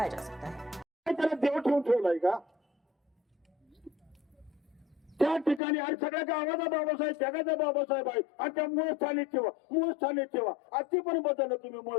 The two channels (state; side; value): drops out; right; at 5.6 s